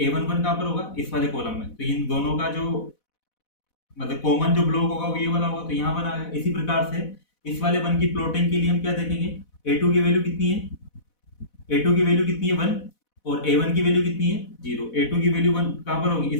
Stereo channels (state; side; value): late; right; 4.1 ms